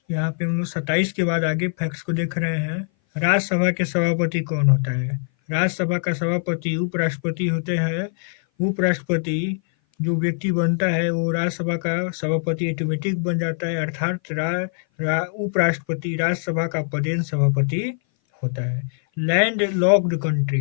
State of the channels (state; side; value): silent; right; 58 dB below the other